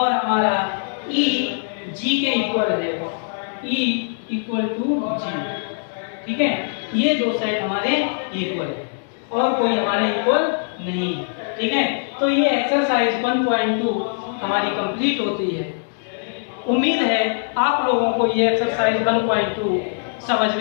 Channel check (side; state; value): right; silent; digital silence